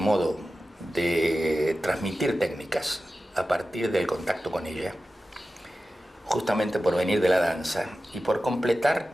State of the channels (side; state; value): both; normal; correlation 0.94